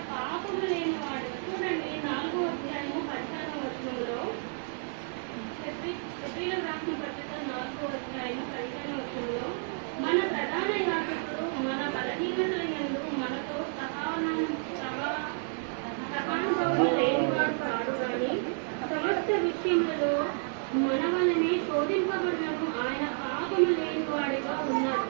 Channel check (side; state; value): left; silent; 57 dB below the other